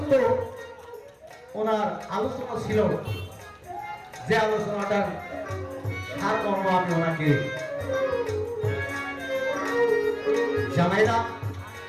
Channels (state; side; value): identical; both; correlation 1.00